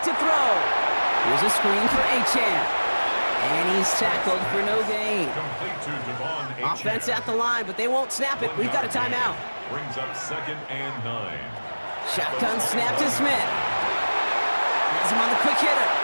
to throw. Here's a screen for Achane. And he's tackled for no gain. Offense at the line, but they won't snap it. We've got a timeout. Brings up 2nd and 9. Shotgun snap to Smith. Has him on the quick hitter.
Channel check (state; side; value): inverted; both; correlation -1.00